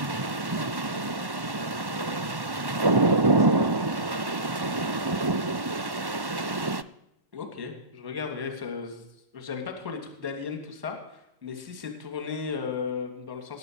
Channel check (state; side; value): late; left; 1.1 ms